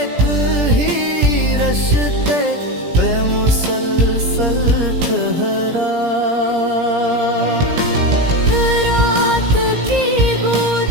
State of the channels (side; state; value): left; late; 17 ms